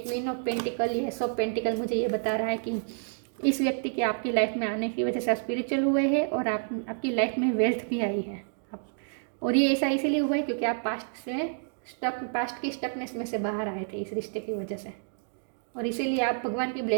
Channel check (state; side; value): silent; left; digital silence